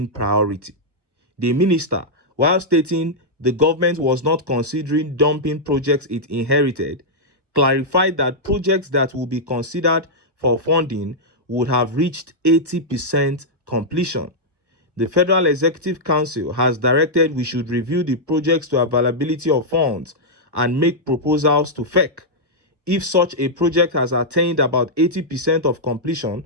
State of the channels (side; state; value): left; late; 1.2 ms